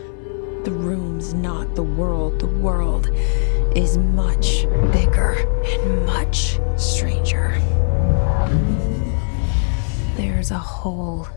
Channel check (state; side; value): silent; right; digital silence